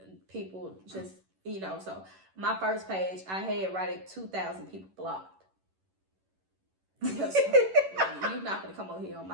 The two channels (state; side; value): late; left; 11 ms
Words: People just, so my first page, I had right at 2,000 people blocked. Because you're not going to come on here on